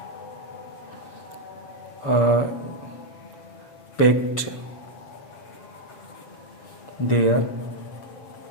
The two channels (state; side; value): late; right; 6.9 ms